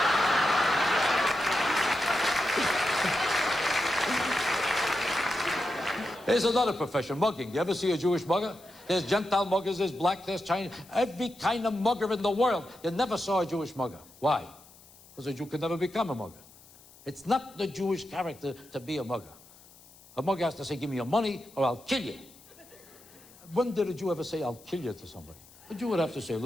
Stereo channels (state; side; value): noise; left; hiss, 24 dB below the sound